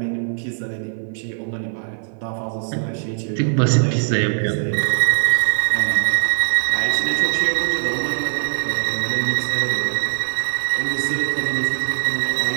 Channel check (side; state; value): left; silent; 58 dB below the other